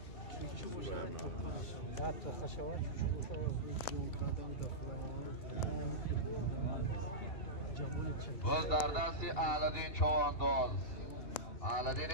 باز در دستی الدین چوانداز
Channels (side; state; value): right; late; 2.8 ms